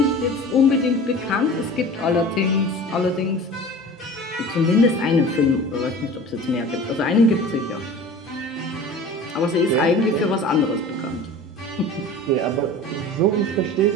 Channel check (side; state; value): both; normal; correlation 0.39